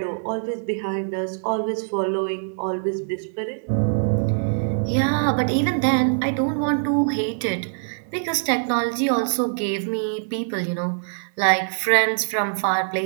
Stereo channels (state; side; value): silent; left; 63 dB below the other